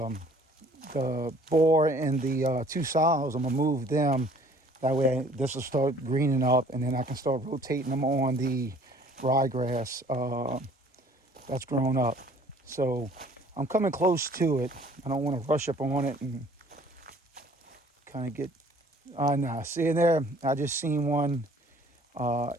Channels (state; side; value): normal; both; correlation 0.55